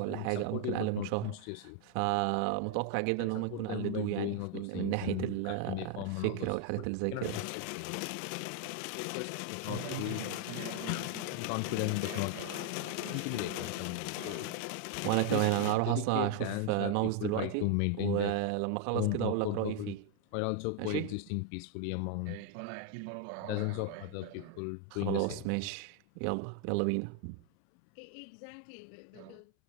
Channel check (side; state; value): both; different; correlation 0.00